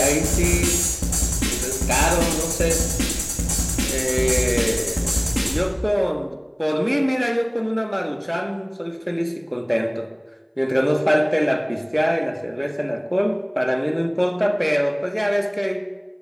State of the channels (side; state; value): both; identical; correlation 1.00